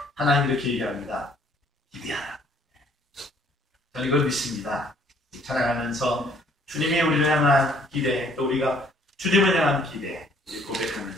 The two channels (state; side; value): normal; both; correlation 0.61